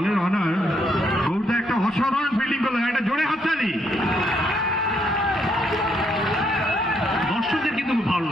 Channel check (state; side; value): normal; both; correlation 0.73